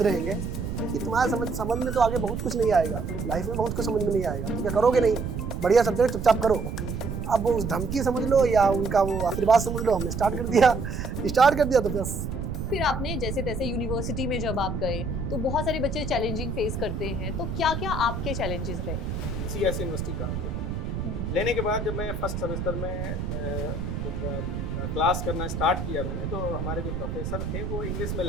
रहेंगे कि तुम्हारे समझ में तो आगे बहुत कुछ नहीं आएगा, लाइफ में बहुत कुछ समझ में नहीं आएगा, तो क्या करोगे नहीं, बढ़िया सब्जेक्ट चुपचाप करो। अब वो उस धमकी समझ लो या उनका वो आशीर्वाद समझ लो, हमने स्टार्ट कर दिया तो बस। फिर आपने जैसे तैसे यूनिवर्सिटी में जब आप गए तो बहुत सारे बच्चे चैलेंजिंग फेस करते हैं, तो क्या क्या आपके चैलेंजेस रहे? सीएस यूनिवर्सिटी का लेने के बाद जब मैं फर्स्ट सेमेस्टर में क्लास करना स्टार्ट किया मैंने, तो हमारे जो प्रोफेसर थे वो इंग्लिश में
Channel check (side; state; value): right; noise; rumble, 4 dB below the sound